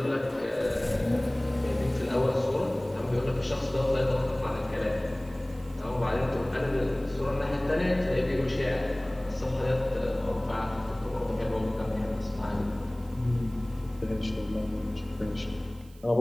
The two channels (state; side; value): noise; right; hiss, 27 dB below the sound